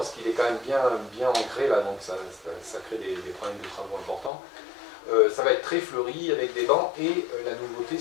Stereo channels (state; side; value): drops out; right; at 4.3 s